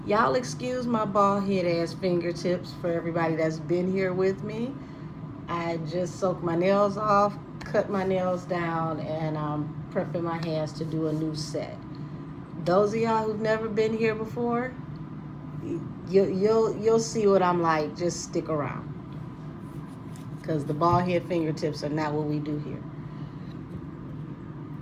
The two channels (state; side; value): identical; both; correlation 1.00